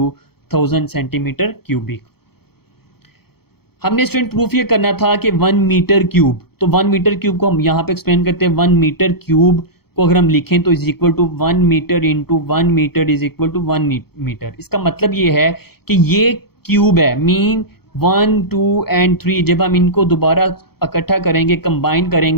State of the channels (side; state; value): right; late; 0.96 ms